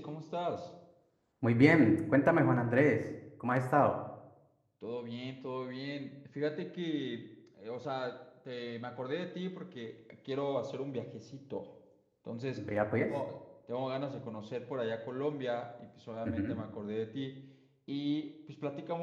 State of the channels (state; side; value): identical; both; correlation 1.00